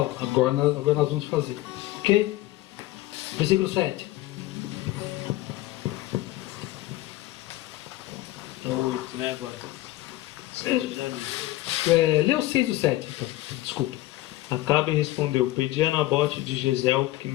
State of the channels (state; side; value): quieter; right; 16.9 dB